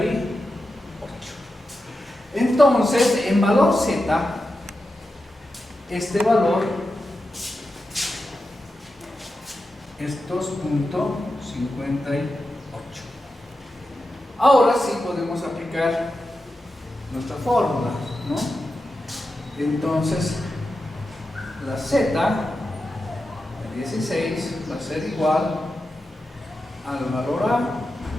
Entonces, en valor z, este valor es 2.58. Ahora sí podemos aplicar nuestra fórmula, ¿no? Entonces, la z de 16 va a ser igual al valor a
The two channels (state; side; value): normal; both; correlation 0.90